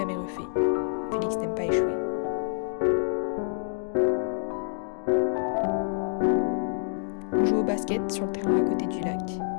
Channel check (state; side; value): silent; right; digital silence